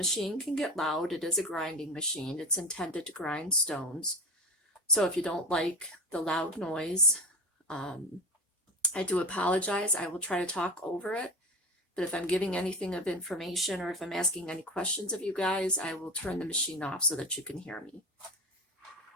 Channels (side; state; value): both; normal; correlation 0.27